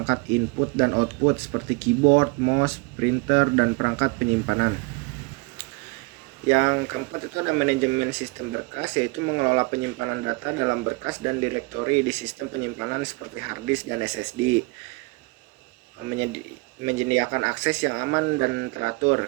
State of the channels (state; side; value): quieter; left; 26.3 dB